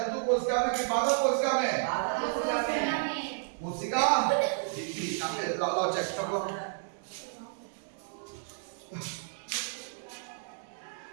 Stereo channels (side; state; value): left; silent; digital silence